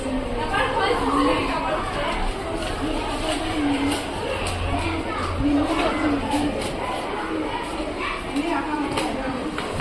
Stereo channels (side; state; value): both; identical; correlation 1.00